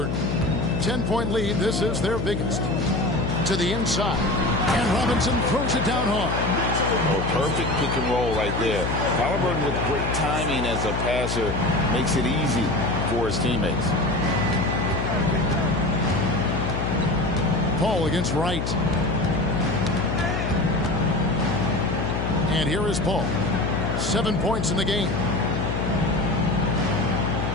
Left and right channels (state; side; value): noise; left; hum, 1 dB below the sound